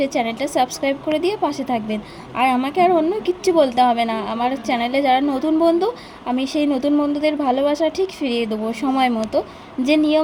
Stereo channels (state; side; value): identical; both; correlation 1.00